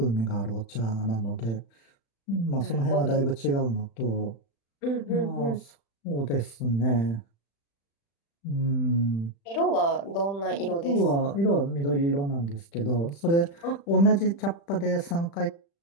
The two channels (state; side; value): late; right; 35 ms